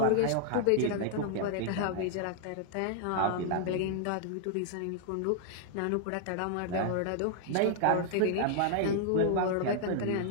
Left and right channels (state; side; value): different; both; correlation 0.00